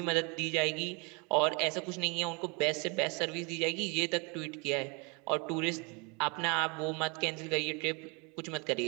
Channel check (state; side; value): quieter; left; 31.2 dB